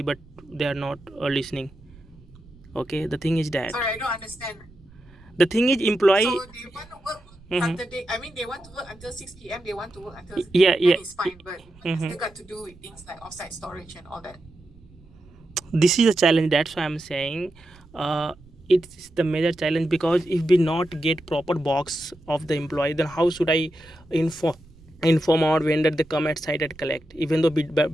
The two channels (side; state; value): right; noise; rumble, 25 dB below the sound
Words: but they are not listening. Okay, the thing is that. Sorry, I don't understand. The thing is, employee. So they want to work Saturday. I mean, they want to work until 6 p.m. They want to work until Yeah. It's fine, but it's still got to do with things like offsite storage and all that. This is a challenge. That's why I'm saying it's the major challenge, because if we not get proper box of the employee, then how should I inform our vendor they come at site and collect, even though